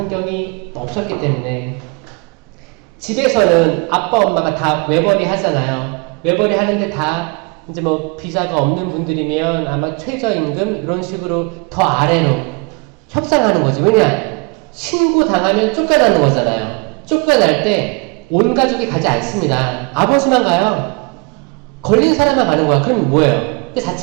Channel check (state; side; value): quieter; left; 29.9 dB